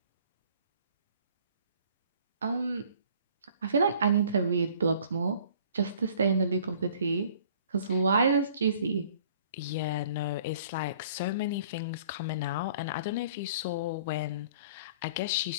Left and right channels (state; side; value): inverted; both; correlation -0.53